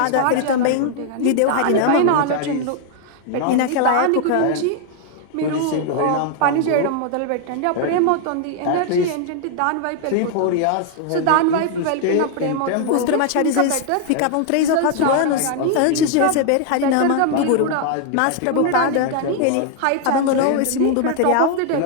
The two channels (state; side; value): different; both; correlation 0.00